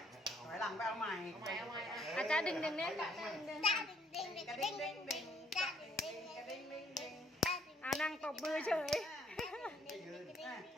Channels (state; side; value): normal; both; correlation 0.66